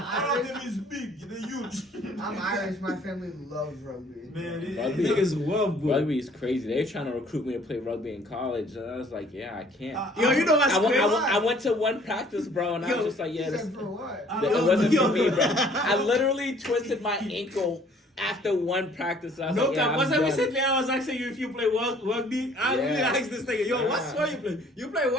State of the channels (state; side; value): normal; both; correlation 0.57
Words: all of them is big, they're huge. I'm Irish. My family loves rugby. Man, Rugby. Niggas well, bro. Rugby is crazy. They were trying to recruit me to play rugby in college, and I was like, yeah, I can't. Yo, you know what's I went, crazy? I went to one practice, bro, and I Yo, was just like, He yeah, this, said for what? it wasn't Yo. for me, bro. I literally twisted my ankle after one practice. I was No like, yeah, cap. I'm Once I done. recently I was asking you if you play rugby. I really Yeah. asked this nigga, yo, what Nah. sport you play? You play